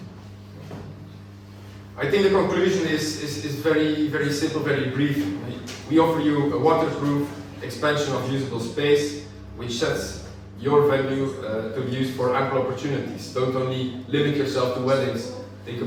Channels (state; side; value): identical; both; correlation 1.00